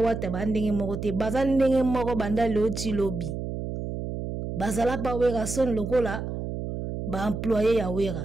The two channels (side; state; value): right; noise; hum, 5 dB below the sound